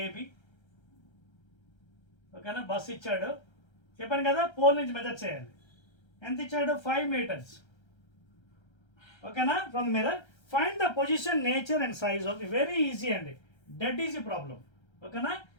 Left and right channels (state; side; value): late; right; 1.3 ms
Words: ఏబి. ఓకేనా, బస్సు ఇచ్చాడు, చెప్పాను కదా పోల్ నుంచి మెజర్ చేయాలి. ఎంత ఇచ్చాడు, 5 meters. ఓకేనా, from the mirror find the position, nature and size of. Very easy అండి, డెడ్ ఈజీ ప్రాబ్లం. ఓకేనా,